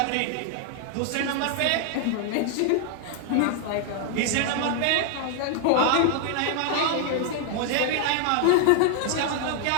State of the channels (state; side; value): different; both; correlation 0.00